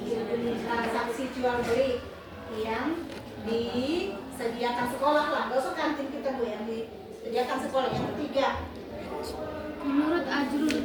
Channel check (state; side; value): identical; both; correlation 1.00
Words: Transaksi jual beli yang disediakan sekolah lah, gak usah kantin kita Bu, yang disediakan sekolah. Yang ketiga Menurut Ajrul